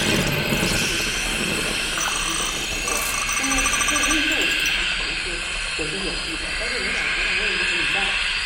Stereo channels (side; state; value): both; identical; correlation 1.00